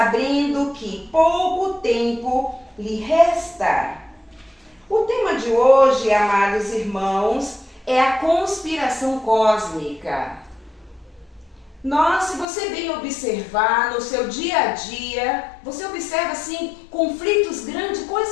que pouco tempo lhe resta. O tema de hoje, amados irmãos, é a conspiração cósmica. Se você bem observar no seu dia a dia, você observa assim conflitos grandes,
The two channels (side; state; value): right; drops out; at 12.5 s